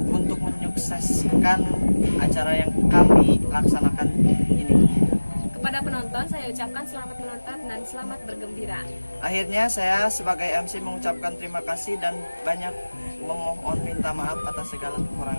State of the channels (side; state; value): both; inverted; correlation -1.00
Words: untuk menyukseskan acara yang kami laksanakan ini. Kepada penonton, saya ucapkan selamat menonton dan selamat bergembira. Akhirnya saya sebagai MC mengucapkan terima kasih dan banyak memohon minta maaf atas segala